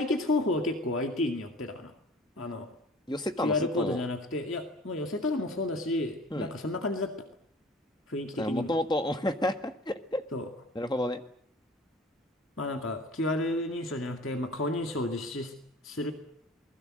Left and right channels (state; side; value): normal; both; correlation 0.45